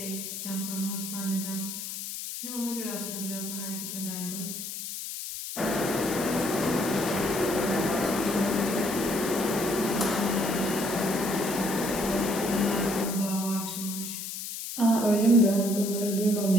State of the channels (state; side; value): noise; left; hiss, 7 dB below the sound